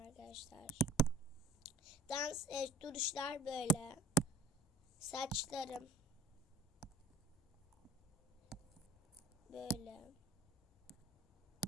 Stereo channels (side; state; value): both; normal; correlation 0.47